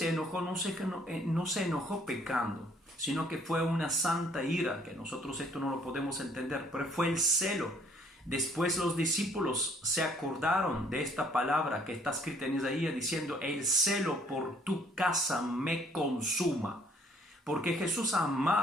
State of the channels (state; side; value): normal; both; correlation 0.61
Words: enojó no se enojó pecando, sino que fue una santa ira, que nosotros esto no lo podemos entender, pero fue el celo. Después los discípulos se acordaron de esta palabra que está escrita en Isaías diciendo, el celo por tu casa me consuma. Porque Jesús